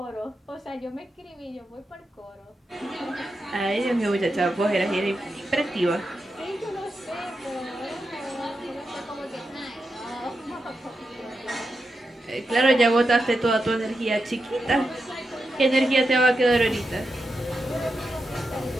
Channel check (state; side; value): normal; both; correlation 0.87